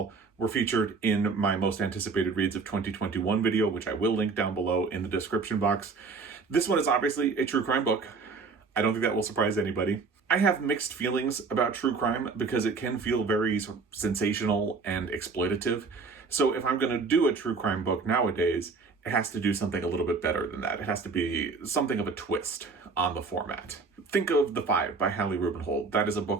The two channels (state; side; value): quieter; left; 4.6 dB